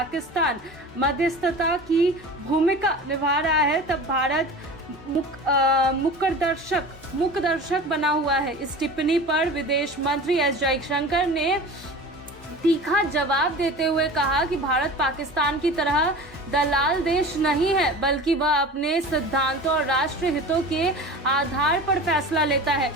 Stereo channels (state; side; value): normal; both; correlation 0.36